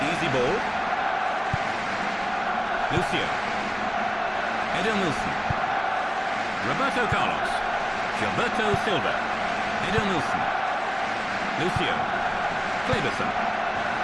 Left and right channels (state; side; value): identical; both; correlation 1.00